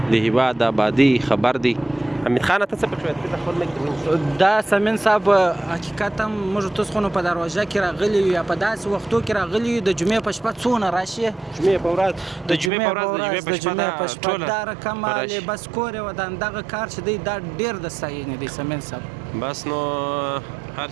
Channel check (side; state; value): left; drops out; at 12.7 s